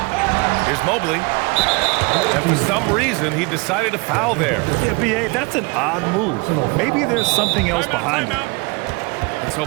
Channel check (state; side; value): quieter; left; 28.0 dB